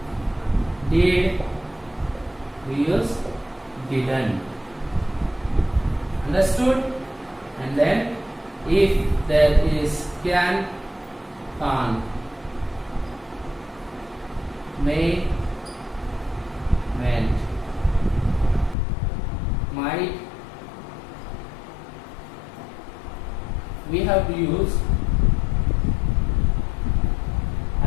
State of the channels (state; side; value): drops out; right; at 18.8 s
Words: did, we use didn't. Understood? And then if there is can, can't, may, meant, might, we have to use